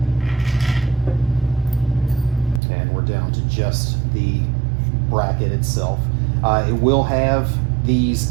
And we're down to just the bracket itself. It will have these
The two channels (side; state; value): left; drops out; at 2.6 s